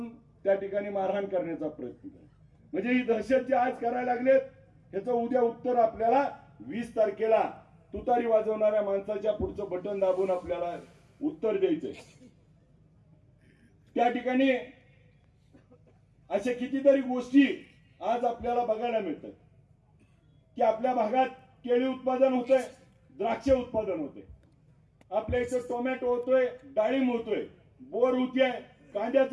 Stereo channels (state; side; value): identical; both; correlation 1.00